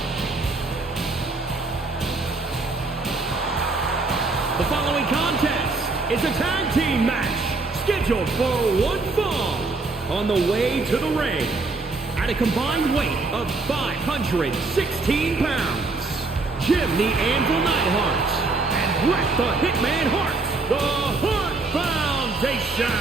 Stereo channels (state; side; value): quieter; left; 3.6 dB